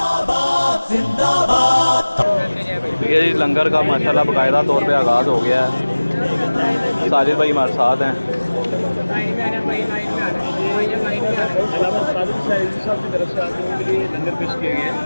ये जी लंगर का माशाल्लाह बाकायदा तौर पे आगाज़ हो गया है। साजिद भाई हमारे साथ हैं।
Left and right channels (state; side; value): inverted; both; correlation -1.00